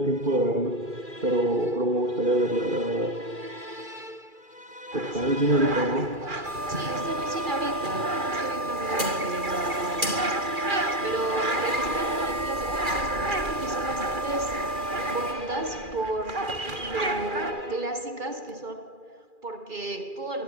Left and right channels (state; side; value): late; left; 2.4 ms